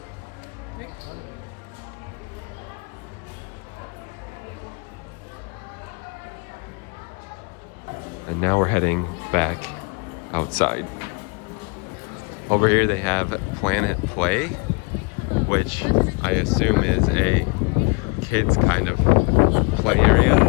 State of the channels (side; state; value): right; quieter; 30.4 dB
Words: And now we're heading back outside. Over here they have Planet Play, which I assume is a kids kind of play area.